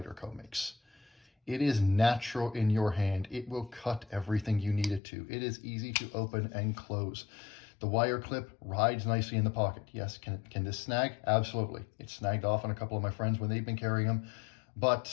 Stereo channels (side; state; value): right; drops out; at 5.0 s